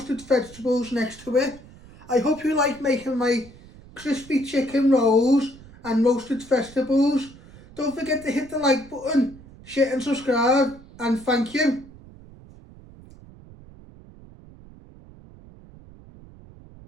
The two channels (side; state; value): right; noise; rumble, 21 dB below the sound